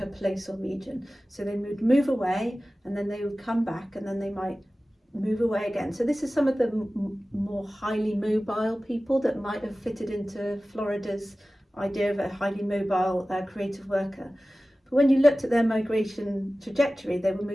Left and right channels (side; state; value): both; normal; correlation 0.96